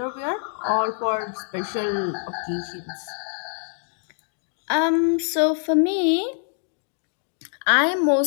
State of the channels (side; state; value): right; silent; 62 dB below the other